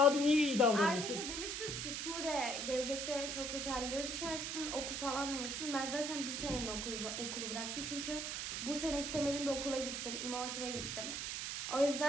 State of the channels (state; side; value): noise; right; hiss, 3 dB below the sound